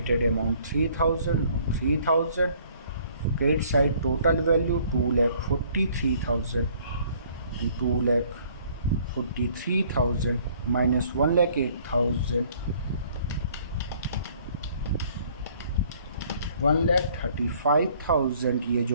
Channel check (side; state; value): both; inverted; correlation -0.59